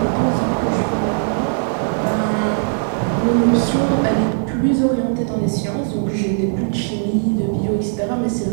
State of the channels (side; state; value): left; silent; 66 dB below the other